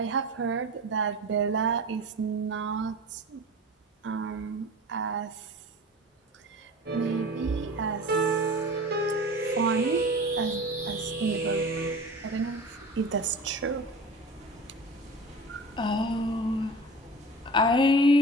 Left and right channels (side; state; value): both; normal; correlation 0.36